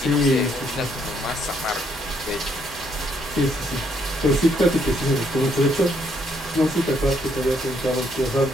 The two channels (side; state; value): both; normal; correlation 0.71